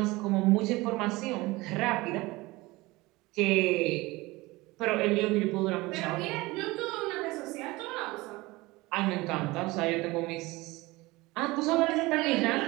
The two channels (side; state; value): left; quieter; 21.4 dB